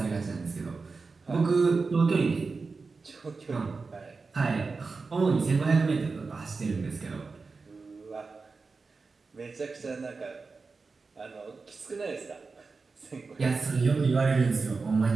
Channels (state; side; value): quieter; left; 4.3 dB